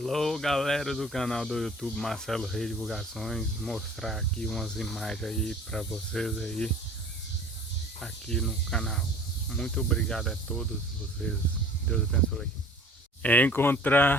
galera do canal do YouTube Marcelo Reis Divulgações, mostrar aqui umas imagens aí para vocês aí aqui no canal. Muito obrigado a todos vocês, Deus abençoe.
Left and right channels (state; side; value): normal; both; correlation 0.48